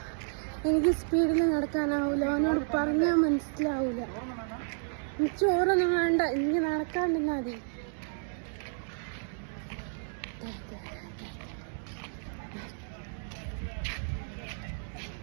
എനിക്ക് സ്പീഡിൽ നടക്കാനാവൂല, അവനോട് പറഞ്ഞാൽ മനസ്സിലാവൂല. ചോറൊന്നും വേണ്ട, എനിക്ക് നടക്കാണ്ടിരുന്നാ മതി.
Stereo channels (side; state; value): left; silent; digital silence